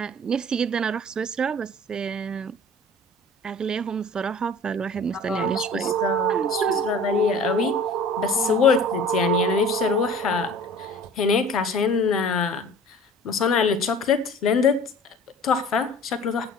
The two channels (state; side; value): normal; both; correlation 0.44